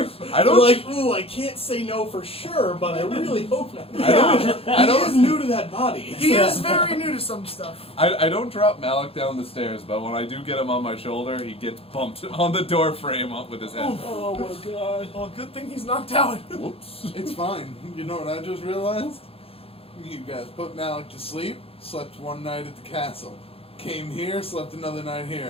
I You're don't. like, ooh, I can't say no for sure, but I really hope not. I He is new to that body. He is very new to some stuff. I don't drop Malok down the stairs, but when I do get him on my shoulder, he gets bumped on the door frame up with his head. Oh my god. Well, good thing he's knocked out. Whoops. It's fine. You know what I just realized? You guys put Malok to sleep, slept one night at the castle. Came here, slept another night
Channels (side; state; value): right; late; 0.28 ms